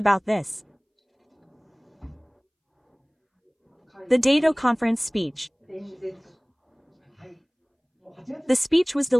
this. The Dado Conference speech. The speech was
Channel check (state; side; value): identical; both; correlation 1.00